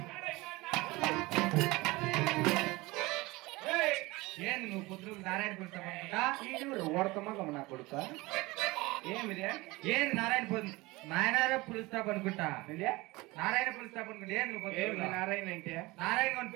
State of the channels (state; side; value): quieter; left; 21.9 dB